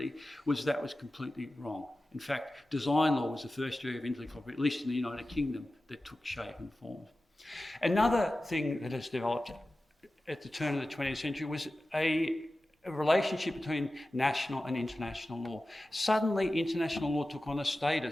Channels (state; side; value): normal; both; correlation 0.95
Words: was that was completely wrong. In fact, design law was the first area of intellectual property, at least in the United Kingdom, that took shape and form. Another thing that has developed at the turn of the 20th century was a relationship between national and international law. Suddenly, international law took on a